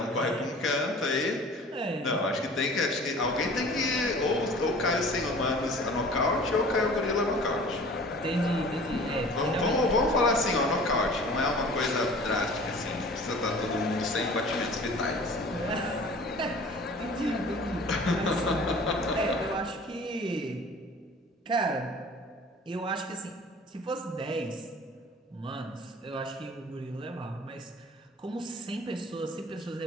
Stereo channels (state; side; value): normal; both; correlation 0.45